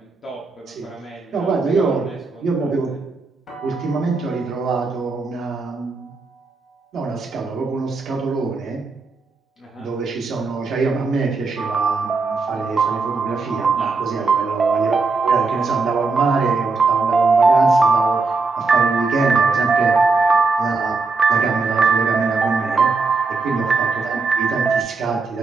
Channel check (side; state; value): left; quieter; 4.1 dB